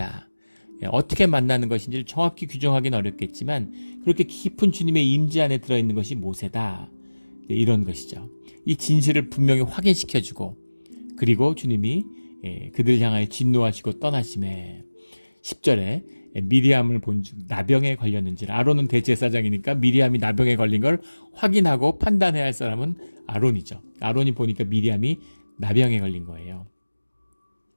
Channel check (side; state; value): both; inverted; correlation -1.00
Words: 예. 어떻게 만나는 것인지를 정확히 규정하기는 어렵겠지만 그렇게 깊은 주님의 임재 안에 들어있는 것이 모세다. 예. 이런 것이죠. 이 진실을 분명히 확인시켜주고, 그리고 주님이 그들 향하여 진노하시고 떠나심에 10절에 미리암을 본즉 나병에 걸렸는지, 아론은 대제사장이니까 미리암이 나병에 걸린 걸 확인하고 판단해야 할 사람은 아론이죠. 아론이 보니까 미리암이 나병에 걸린 거예요.